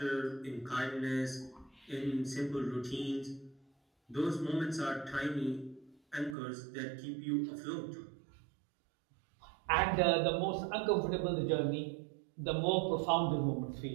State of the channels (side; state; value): left; drops out; at 6.4 s